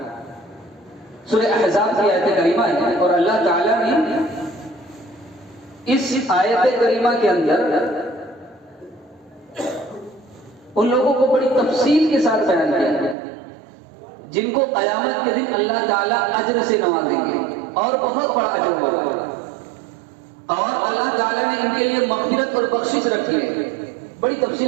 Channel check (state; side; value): drops out; left; at 13.2 s